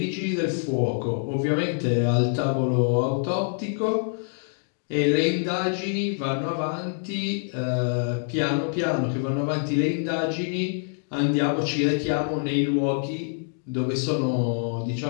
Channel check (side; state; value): right; silent; digital silence